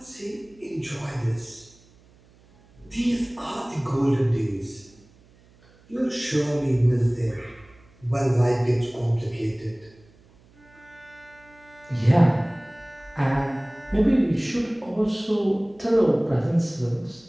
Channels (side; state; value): right; noise; hum, 29 dB below the sound